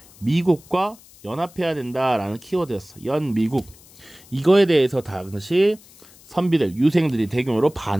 미국과 연합해야 된다라는 키워드였어. 연미국. 이거에 대해서 당시 선비들, 유생들이 대규모로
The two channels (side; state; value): left; noise; hiss, 24 dB below the sound